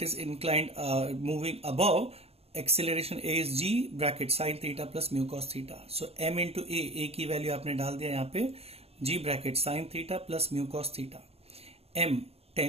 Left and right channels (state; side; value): late; left; 0.29 ms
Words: is inclined moving above, acceleration a is g bracket sine theta plus mu cos theta. So m into a की value आपने डाल दिया यहाँ पे, g bracket sine theta plus mu cos theta. m